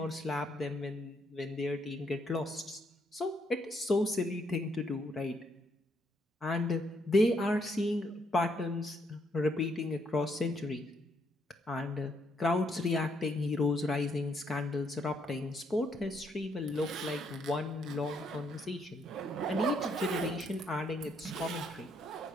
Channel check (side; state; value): both; normal; correlation 0.73